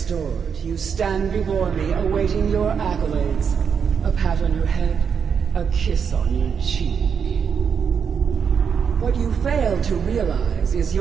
you stand before me awaiting your accolades. A pat on your head, a kiss on your cheek. What you fail to realize is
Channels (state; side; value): quieter; left; 6.8 dB